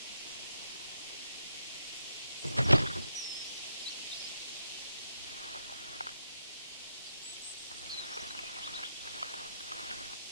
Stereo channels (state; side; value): inverted; both; correlation -0.82